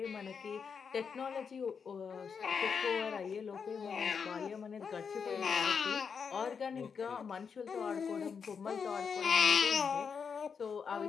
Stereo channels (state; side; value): quieter; right; 6.2 dB